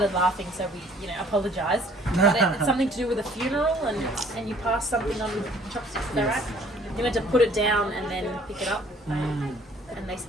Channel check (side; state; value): both; normal; correlation 0.57